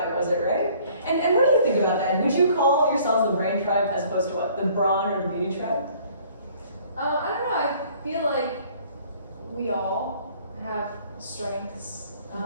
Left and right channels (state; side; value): inverted; both; correlation -0.56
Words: was it right? And what do you think about that? Would you call yourselves the brain tribe as opposed to what? The brawn or the beauty tribe? I don't know, I feel like we all have strengths,